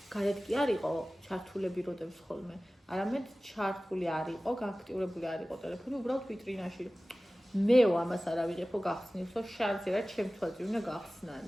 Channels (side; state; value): both; normal; correlation 0.97